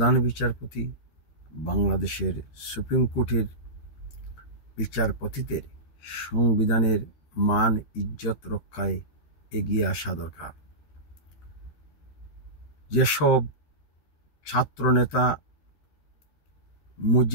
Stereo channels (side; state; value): right; late; 13 ms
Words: বিচারপতি, বাংলাদেশের সুপ্রিম কোর্টের বিচারপতিদের সংবিধানের মান ইজ্জত রক্ষায় এগিয়ে আসা দরকার। যেসব ছাত্রনেতা